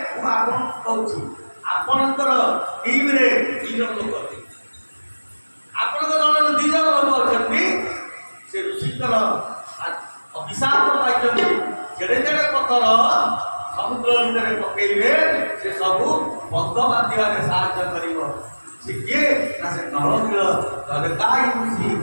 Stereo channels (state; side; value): inverted; both; correlation -1.00